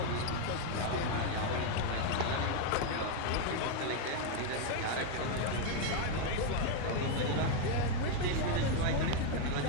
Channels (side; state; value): both; different; correlation 0.01